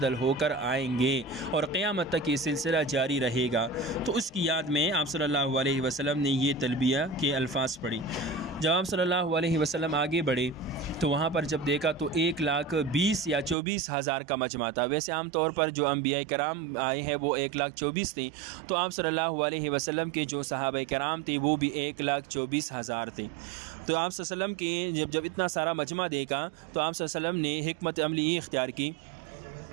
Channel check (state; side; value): drops out; left; at 13.6 s